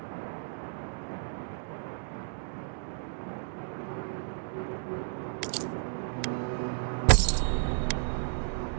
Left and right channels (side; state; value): left; silent; digital silence